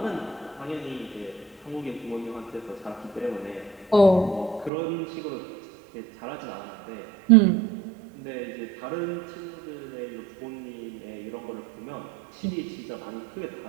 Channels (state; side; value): drops out; left; at 4.7 s